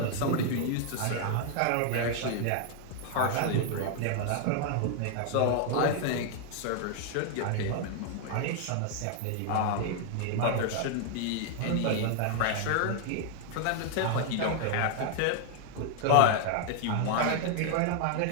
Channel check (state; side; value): different; both; correlation 0.00